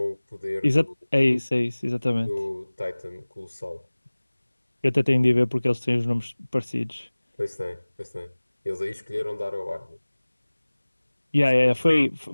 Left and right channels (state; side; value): inverted; both; correlation -1.00